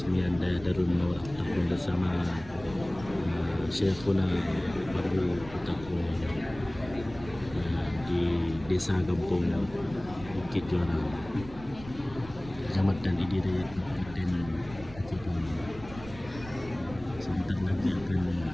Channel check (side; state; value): right; noise; rumble, 16 dB below the sound